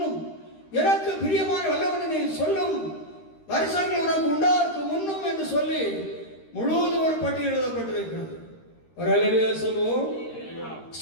எனக்கு பிரியமான வல்லவனை சொல்லும் வருஷங்கள் உனக்கு உண்டாருக்கு முன்னும் என்று சொல்லி முழுவதும் ஒரு பட்டியல் எழுதப்பட்டிருக்கிறது. ஒரு அல்லேலூயா சொல்லுவோம்.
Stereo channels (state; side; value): late; right; 13 ms